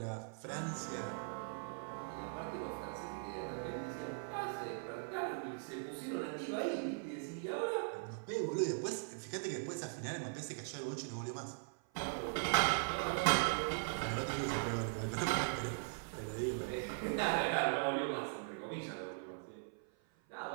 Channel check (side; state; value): left; silent; 51 dB below the other